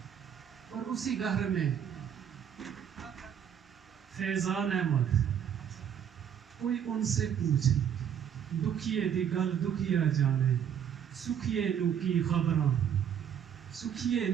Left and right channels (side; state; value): left; quieter; 8.8 dB